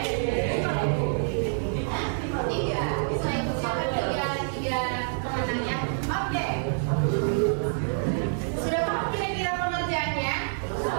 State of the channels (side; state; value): left; silent; digital silence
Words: 3. Bisa ikut siapa 3 pemenangnya. Oke. Sudah paham kira-kira pengerjaannya?